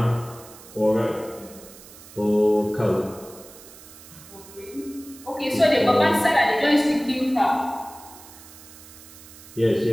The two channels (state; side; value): noise; right; hiss, 19 dB below the sound